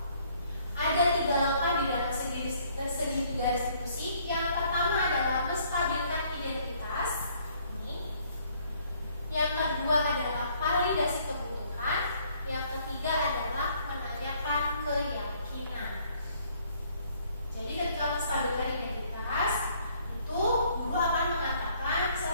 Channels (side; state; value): both; inverted; correlation -0.64